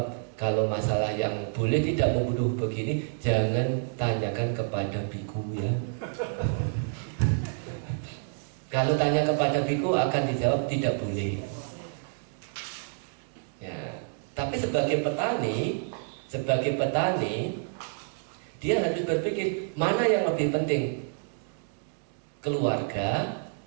kalau masalah yang boleh tidak membunuh begini, jangan tanyakan kepada biku ya. Kalau tanya kepada biku akan dijawab tidak boleh. Ya, tapi sebagai petani, dia harus berpikir mana yang lebih penting, keluarga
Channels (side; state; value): left; silent; digital silence